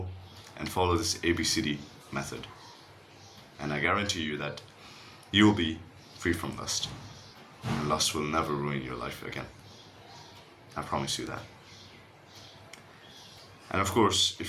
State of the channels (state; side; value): identical; both; correlation 1.00